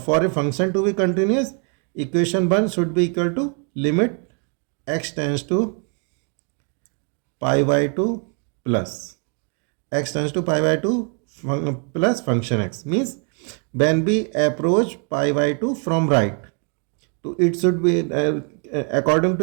a function to be continuous, equation 1 should be equal to limit x tends to pi by 2 plus x tends to pi by 2 plus function x, means when we approach pi by 2 from right, so it should be according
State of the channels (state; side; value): quieter; left; 39.8 dB